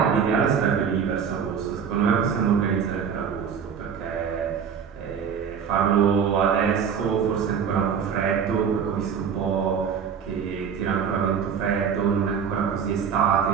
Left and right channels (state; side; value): quieter; left; 7.1 dB